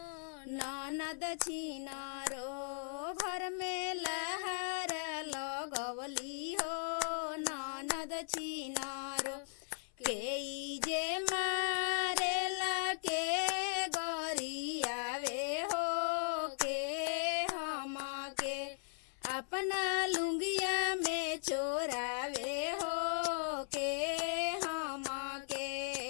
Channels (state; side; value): silent; right; 52 dB below the other